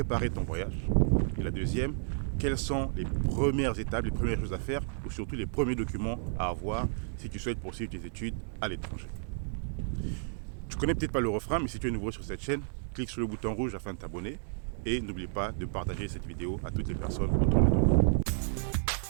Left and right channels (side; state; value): left; silent; digital silence